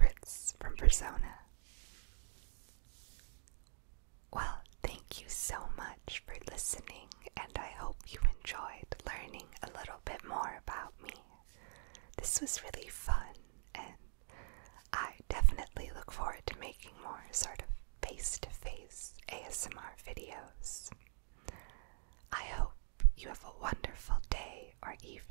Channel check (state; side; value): silent; left; digital silence